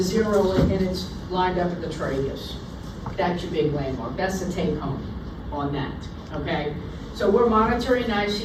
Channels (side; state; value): both; identical; correlation 1.00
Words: zero it and it's lined up at the tragus. That's your big landmark, that's the take home on that, okay? So we're monitoring